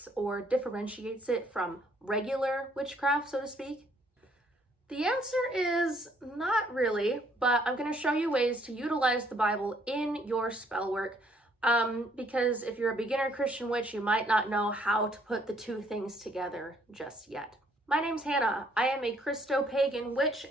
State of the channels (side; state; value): both; normal; correlation 0.65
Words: or differentiates it from regular witchcraft, so to speak? The answer is not really, but I'm going to show you ways to utilize the Bible in your spell work. Because if you're a beginner Christian witch, you might not know how to put the two things together just yet. My name's Hannah. I am a Christo-pagan witch,